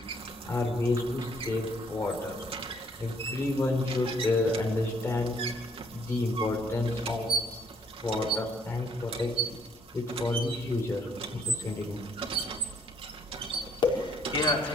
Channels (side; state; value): both; normal; correlation 0.65